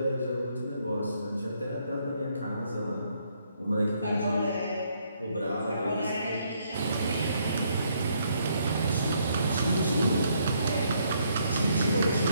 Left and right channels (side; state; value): both; inverted; correlation -0.71